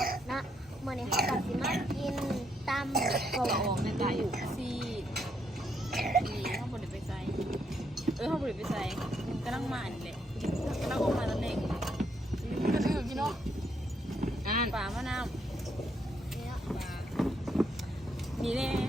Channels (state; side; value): normal; both; correlation 0.75